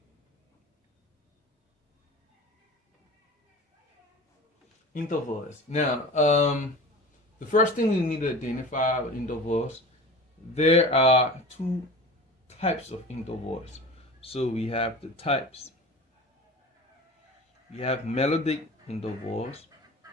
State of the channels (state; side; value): normal; both; correlation 0.36